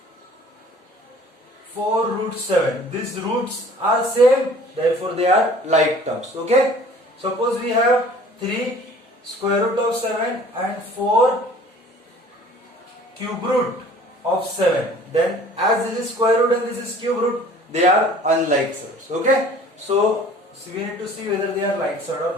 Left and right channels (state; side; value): normal; both; correlation 0.50